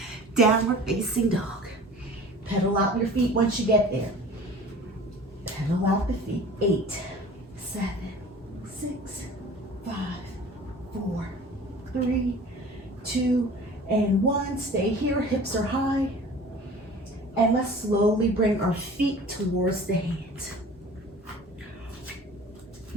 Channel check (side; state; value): both; normal; correlation 0.43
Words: Downward facing dog. Pedal out your feet once you get there. Pedal out the feet. 8, 7, 6, 5, 4, 3, 2, and 1. Stay here. Hips are high. And let's slowly bring our feet towards the hands.